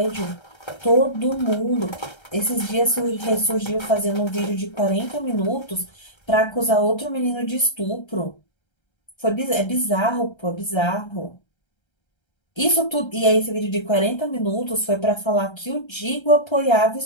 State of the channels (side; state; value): right; late; 1.3 ms